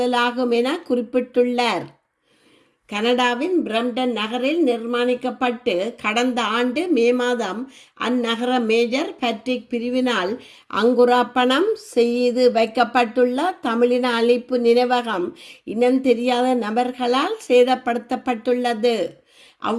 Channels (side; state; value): both; identical; correlation 1.00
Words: என குறிப்பிட்டுள்ளார். கனடாவின் பிரம்டன் நகரில் நிர்மாணிக்கப்பட்டு கடந்த ஆண்டு மே மாதம் அந்நகர மேஜர் பேட்ரிக் பிரிவினால் அங்குரார்ப்பணம் செய்து வைக்கப்பட்டுள்ள தமிழின அழிப்பு நினைவகம் இனம் தெரியாத நபர்களால் சேதப்படுத்தப்பட்டுள்ளது.